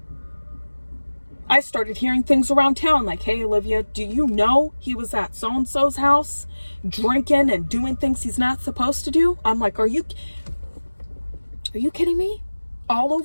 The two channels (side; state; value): both; inverted; correlation -1.00